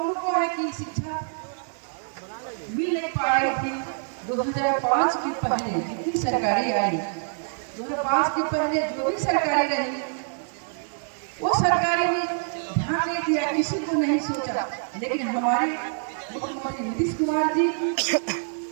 है कि शिक्षा मिल नहीं पा रही थी। 2005 के पहले जितनी सरकारें आई, 2005 के पहले जो भी सरकारें रही, वो सरकारें ध्यान नहीं दिया, किसी को नहीं सोचा। लेकिन हमारे मुख्यमंत्री नीतीश कुमार जी,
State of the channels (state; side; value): silent; left; digital silence